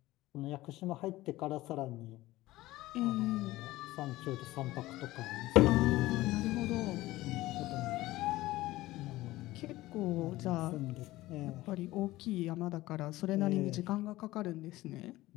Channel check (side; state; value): right; quieter; 17.5 dB